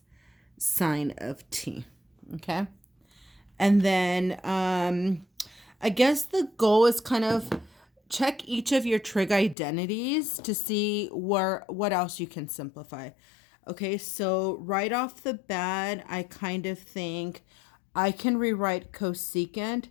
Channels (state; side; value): drops out; right; at 9.6 s